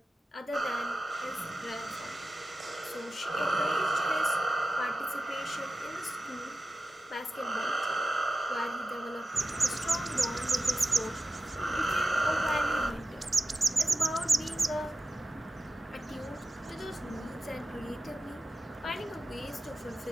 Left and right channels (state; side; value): normal; both; correlation 0.93